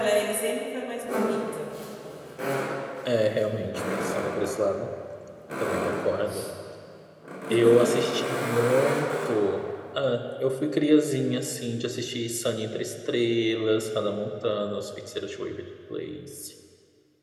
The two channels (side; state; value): both; identical; correlation 1.00